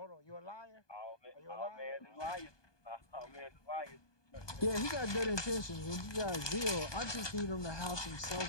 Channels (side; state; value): right; late; 1.2 ms